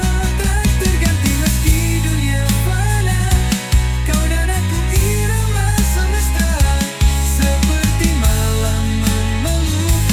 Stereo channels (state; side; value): identical; both; correlation 1.00